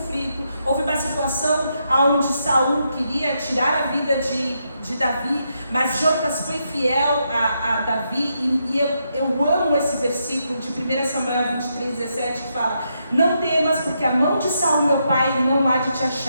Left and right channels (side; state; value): both; inverted; correlation -0.81